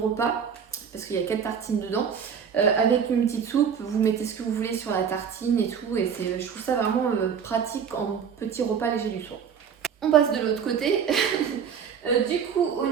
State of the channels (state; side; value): quieter; left; 7.3 dB